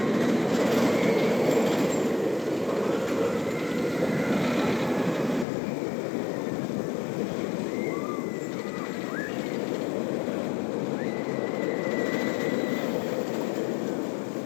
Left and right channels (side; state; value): right; drops out; at 5.5 s